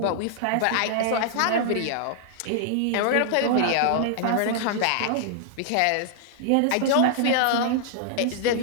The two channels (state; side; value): different; both; correlation -0.01